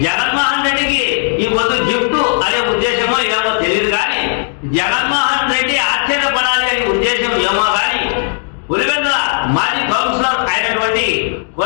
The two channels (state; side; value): silent; right; digital silence